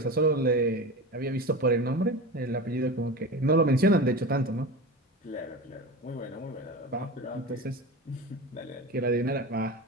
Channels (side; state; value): both; normal; correlation 0.28